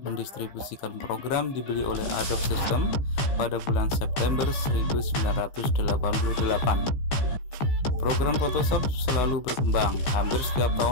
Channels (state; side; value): late; right; 15 ms